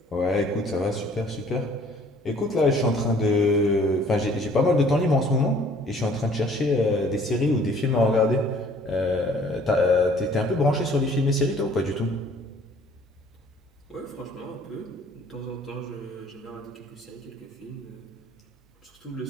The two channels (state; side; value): normal; both; correlation 0.56